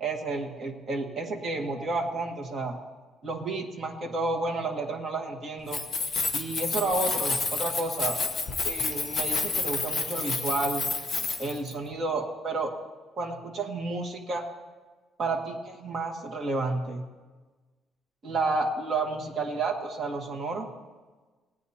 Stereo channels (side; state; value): both; normal; correlation 0.66